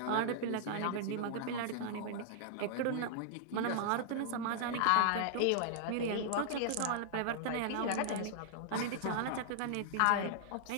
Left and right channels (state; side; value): different; both; correlation -0.01